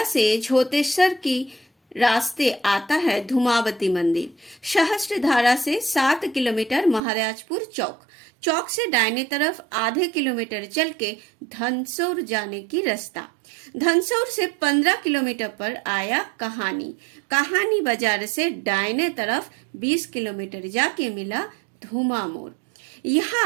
से झोतेश्वर की रास्ते आता है धूमावती मंदिर। सहस्त्रधारा से 7 किलोमीटर महाराजपुर चौक। चौक से दाहिने तरफ आधे किलोमीटर चल के धनसौर जाने की रास्ता। धनसौर से 15 किलोमीटर पर आया कहानी। कहानी बाजार से दाहिने तरफ 20 किलोमीटर जाके मिला धूमा मोड़।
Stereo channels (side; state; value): left; drops out; at 7.0 s